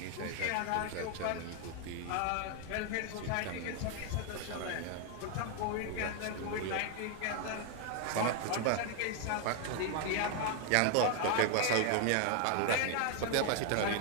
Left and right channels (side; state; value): both; different; correlation 0.00